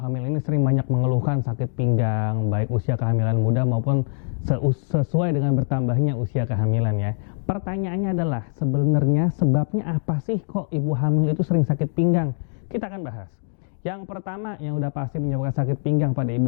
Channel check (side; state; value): right; silent; digital silence